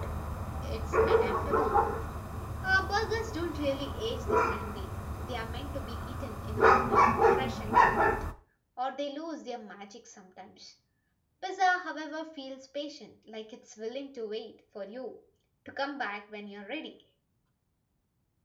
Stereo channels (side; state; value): both; identical; correlation 1.00